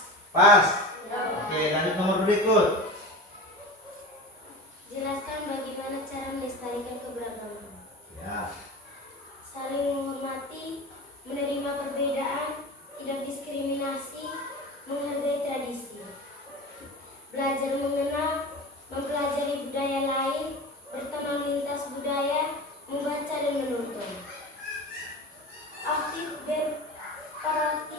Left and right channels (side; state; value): both; normal; correlation 0.31